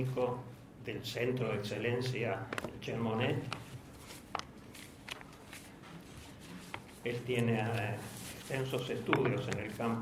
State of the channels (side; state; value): both; identical; correlation 1.00